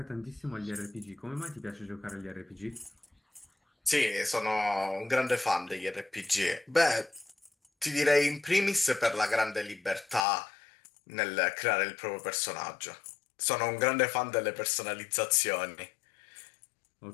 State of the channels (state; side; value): drops out; right; at 10.2 s